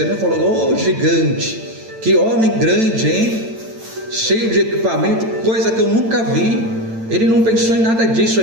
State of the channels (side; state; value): left; late; 8.9 ms